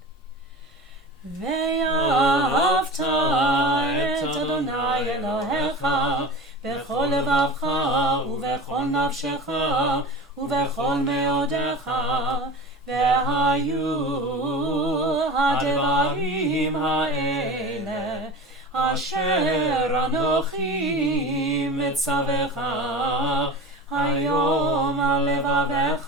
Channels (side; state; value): both; normal; correlation 0.33